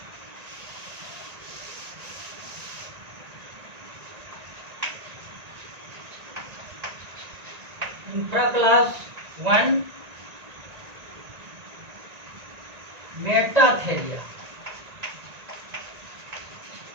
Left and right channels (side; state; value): left; late; 1.9 ms